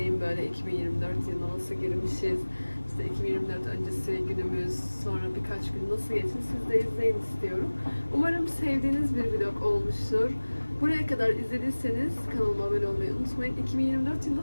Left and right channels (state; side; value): inverted; both; correlation -1.00